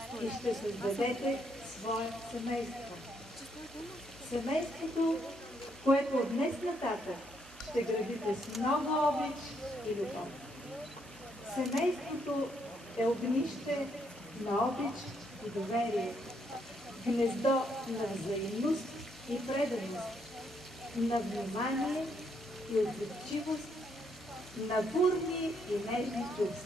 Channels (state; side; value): normal; both; correlation 0.74